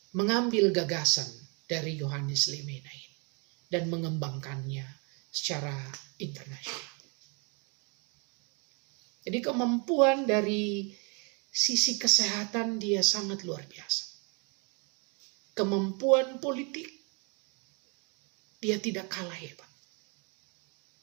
mengambil gagasan dari Yohanes Lemena ini dan mengembangkannya secara internasional. Jadi kemampuan dari sisi kesehatan dia sangat luar biasa. Kemampuan politik dia tidak kalah hebat.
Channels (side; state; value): left; quieter; 33.9 dB